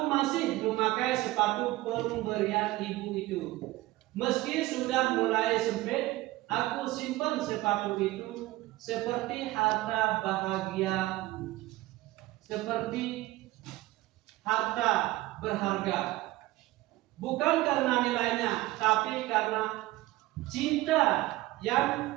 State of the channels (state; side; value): quieter; left; 18.2 dB